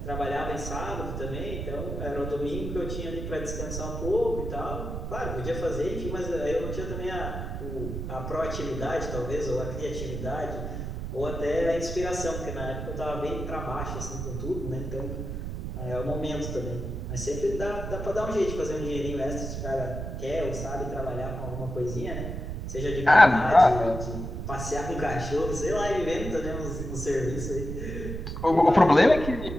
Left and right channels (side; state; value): right; noise; rumble, 5 dB below the sound